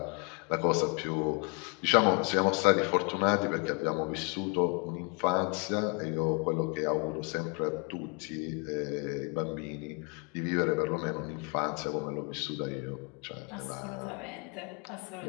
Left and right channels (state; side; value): quieter; right; 33.1 dB